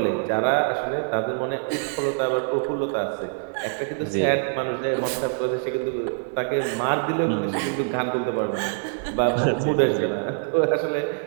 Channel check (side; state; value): left; silent; 58 dB below the other